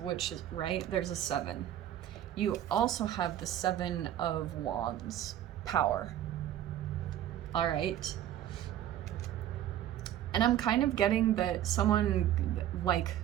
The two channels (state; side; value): quieter; left; 11.8 dB